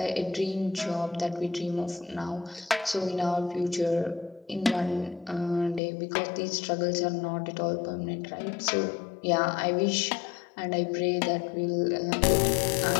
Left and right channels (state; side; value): drops out; right; at 5.8 s